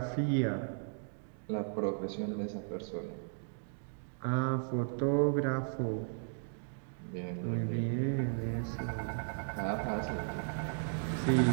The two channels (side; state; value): left; silent; digital silence